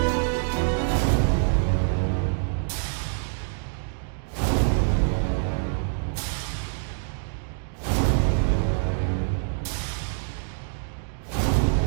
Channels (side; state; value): left; silent; digital silence